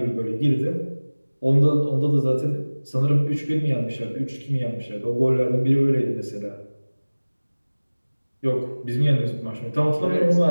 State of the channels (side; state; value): both; inverted; correlation -1.00